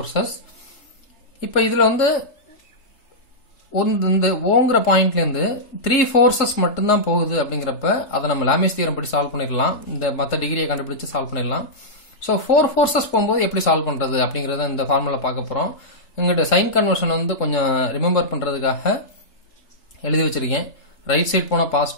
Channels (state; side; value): late; right; 3.7 ms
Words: இப்போ இதுல வந்து இந்த ஓங்கற பாயிண்ட்ல இருந்து 3 ஃபோர்சஸ் மட்டும் தான் போகுது அப்படிங்கறப்ப அத நம்ம லாமேஸ் தியரம் படி சால்வ் பண்ணிரலாம். இந்த மத்த டிகிரியை கண்டுபிடிச்சு சால்வ் பண்ணிரலாம். சோ 4 ஃபோர்சஸ் போயும்போது எப்படி சால்வ் பண்றது அப்படிங்கறத இந்த ஃபார்முலா பார்க்க போறோம். இங்கட சைன் கன்வர்ஷன் வந்து கொஞ்சம் ரிமெம்பர் பண்றதுக்காக எழுதி வச்சிருக்கேன். ரைட் சைடு போனா